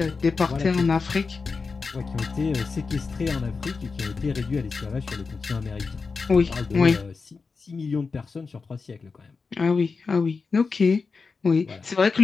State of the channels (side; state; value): right; quieter; 4.6 dB